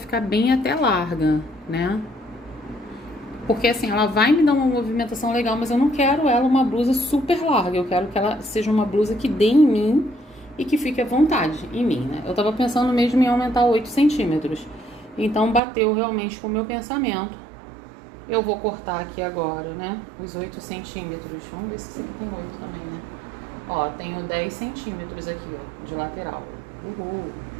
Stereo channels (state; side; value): drops out; left; at 15.6 s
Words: bem até larga, né? Porque assim, ela vai me dar uma movimentação legal, mas eu não quero ela uma blusa super larga. Eu quero que ela seja uma blusa que dê em mim e que fique à vontade em mim, né? Eu tava pensando mesmo em aumentar 8 centímetros. Então, bateu realmente com o meu pensamento. Eu vou cortar aqui agora, né? Os 8 centímetros. Vamos ver se esse aqui tem 8 também, né? Ó, tenho 10 centímetros aqui, ó, de lateral. Uhul!